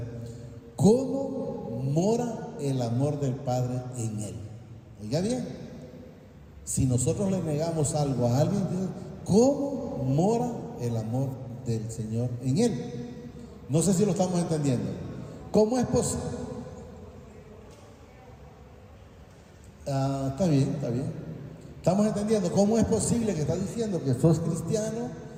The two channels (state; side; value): identical; both; correlation 1.00